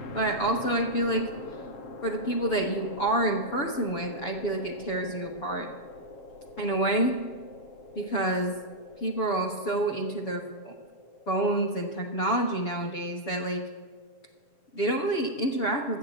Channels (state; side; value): late; right; 7.0 ms